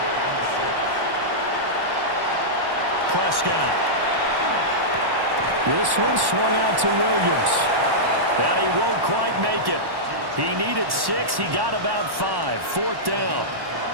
Prescott. This one swung out to Williams. But he won't quite make it. He needed 6. He got about 5. 4th down.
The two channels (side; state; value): left; late; 1.1 ms